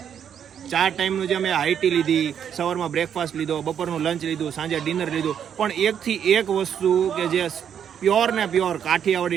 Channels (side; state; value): left; quieter; 8.6 dB